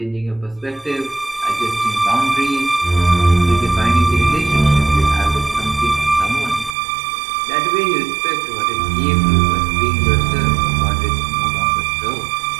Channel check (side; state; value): left; drops out; at 6.8 s